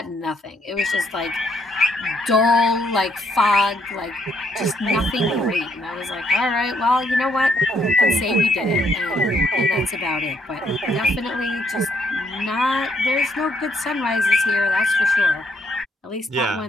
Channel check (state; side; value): normal; both; correlation 0.71